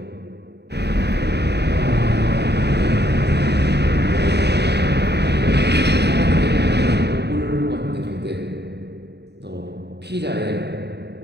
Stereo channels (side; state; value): left; late; 0.49 ms